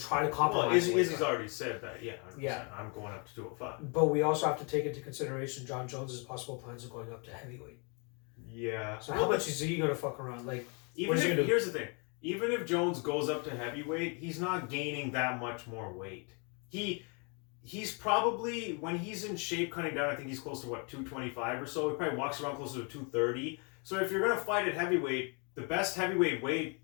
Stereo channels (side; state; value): right; quieter; 35.1 dB